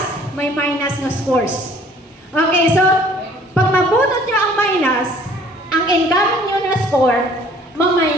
may minus na scores. Okay, so, pag mabunot nyo ang minus, ang incoming nyo na score,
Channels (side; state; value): both; normal; correlation 0.55